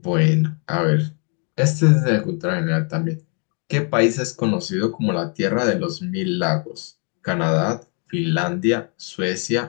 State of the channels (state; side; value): quieter; right; 38.1 dB